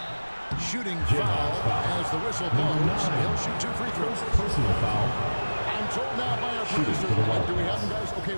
Shooting foul as the whistle blows. He'll shoot 2 free throws. Personal foul. I'm told now by our producer. Do we have them, guys? Okay,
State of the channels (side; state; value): both; inverted; correlation -1.00